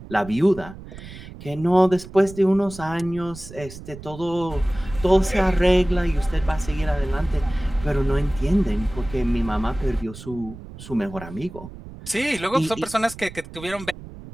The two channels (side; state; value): right; noise; rumble, 15 dB below the sound